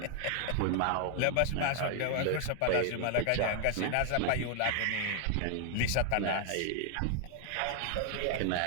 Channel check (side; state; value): both; different; correlation 0.00